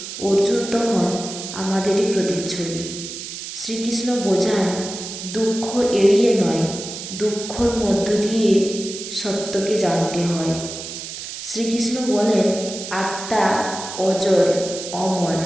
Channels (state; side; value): noise; right; hiss, 9 dB below the sound